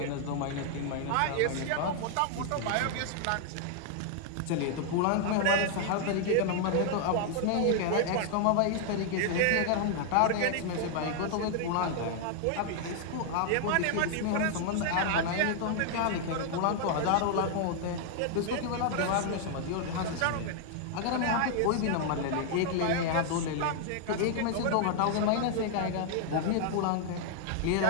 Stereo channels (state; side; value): different; both; correlation 0.00